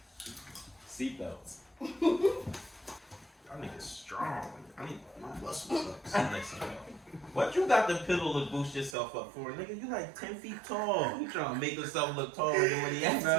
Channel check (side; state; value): left; drops out; at 9.0 s